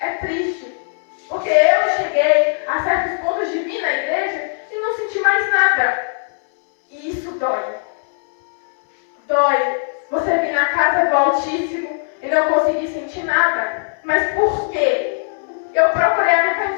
triste. Porque eu cheguei a certos pontos de vir na igreja e não senti mais nada. E isso dói. Dói. Você vir na casa do Altíssimo e não conseguir sentir nada. Mas por quê? Eu procurei me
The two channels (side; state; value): right; silent; 67 dB below the other